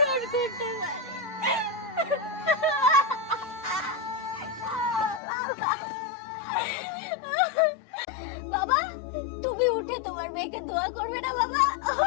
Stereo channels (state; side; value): drops out; right; at 5.2 s